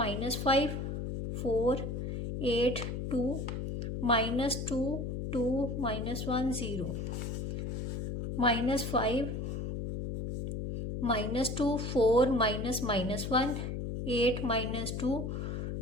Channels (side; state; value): left; noise; hum, 4 dB below the sound